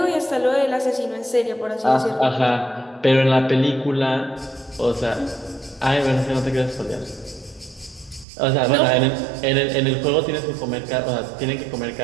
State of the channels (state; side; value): drops out; left; at 8.2 s